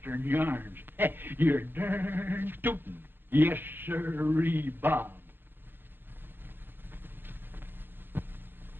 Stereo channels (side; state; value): left; late; 0.10 ms